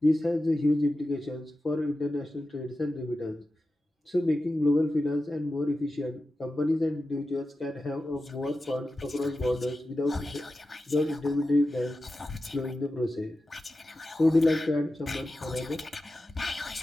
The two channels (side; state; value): both; normal; correlation 0.92